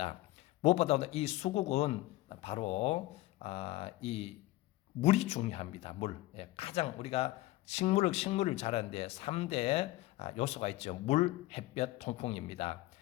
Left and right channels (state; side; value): quieter; right; 17.9 dB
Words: 무엇보다도 이 수국은 바로 이 물이 중요합니다. 물. 가장 우리가 식물을 자라는데 3대 요소가 있죠. 물, 햇볕, 통풍입니다.